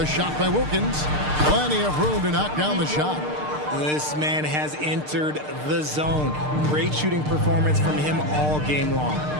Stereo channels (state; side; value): late; left; 6.6 ms